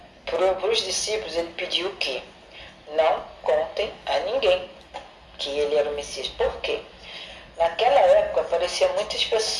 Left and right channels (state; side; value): identical; both; correlation 1.00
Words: para os discípulos, ele pediu o quê? Não contem a ninguém que ele era o Messias. Por quê? Naquela época apareciam muitas